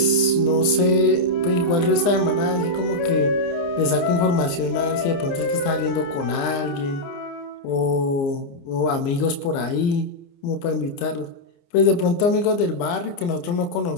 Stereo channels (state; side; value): late; right; 29 ms